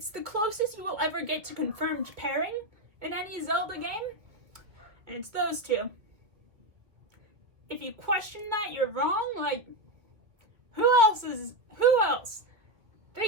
the closest you will ever get to confirmed pairing in any Zelda game, and it's those two. If you question that, you're wrong. Like, who else?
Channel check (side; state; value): left; late; 2.0 ms